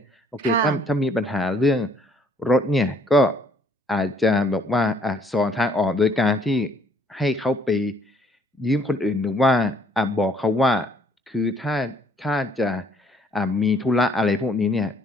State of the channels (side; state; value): both; normal; correlation 0.63